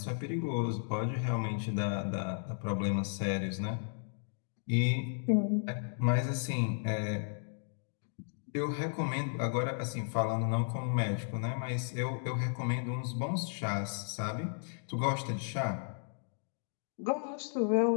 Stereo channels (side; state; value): right; silent; digital silence